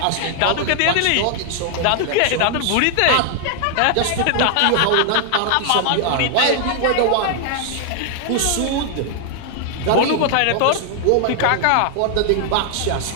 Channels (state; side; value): different; both; correlation 0.00